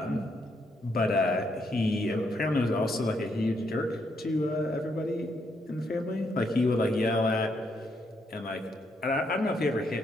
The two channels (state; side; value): normal; both; correlation 0.76